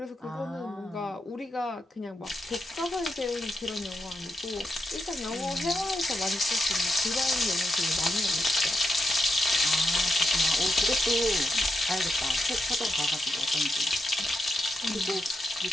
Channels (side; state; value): both; normal; correlation 0.85